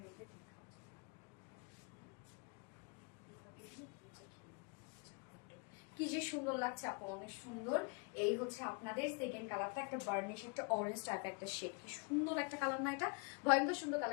রেখে কি যে সুন্দর লাগছে আপু, অনেক সুন্দর। এই হচ্ছে আপনাদের সেকেন্ড কালারটা, একটা বার্নিশ, একটা অরেঞ্জ টাইপ একটা শেড। কি সুন্দর একটা কালার না এটা, ভয়ঙ্কর সুন্দর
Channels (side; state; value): right; quieter; 33.7 dB